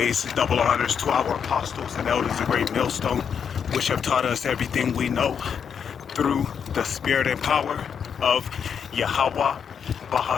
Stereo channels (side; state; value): right; quieter; 7.3 dB